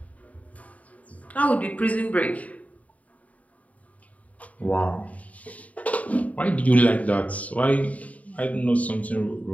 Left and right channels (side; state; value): right; late; 0.069 ms